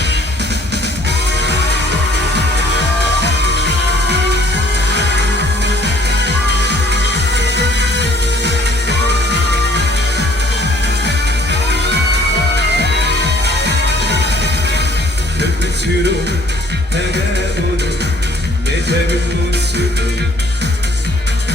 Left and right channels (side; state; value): both; normal; correlation 0.58